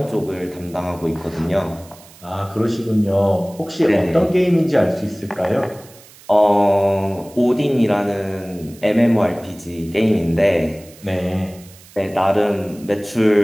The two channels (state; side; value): noise; right; hiss, 23 dB below the sound